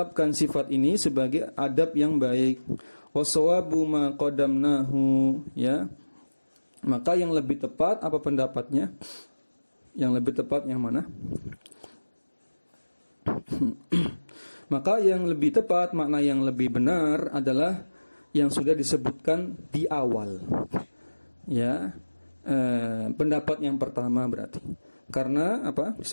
sifat ini sebagai adab yang baik. Wasawabu ma qadamnahu, ya. Maka yang lebih tepat apa pendapatnya? Yang lebih tepat yang mana? Maka yang lebih tepat, makna yang lebih benar adalah yang sudah disebutkan di awal. Ya. Pendapat yang pertama berarti. Karena apa?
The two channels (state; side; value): inverted; both; correlation -1.00